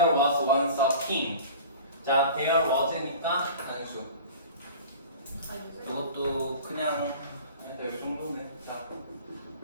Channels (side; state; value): both; inverted; correlation -0.41